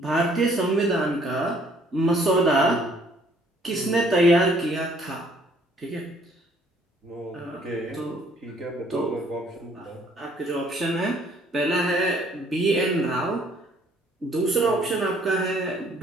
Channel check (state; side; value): normal; both; correlation 0.61